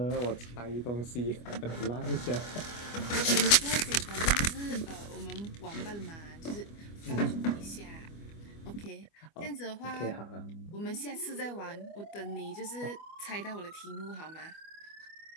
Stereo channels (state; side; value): late; right; 25 ms